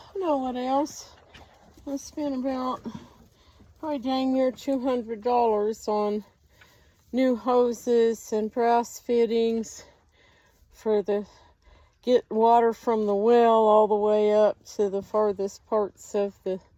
know what else? I spent about probably dang near $200 on new hoses and brass fittings for the get water from the well all the way up to the farthest parts of the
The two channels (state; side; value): identical; both; correlation 1.00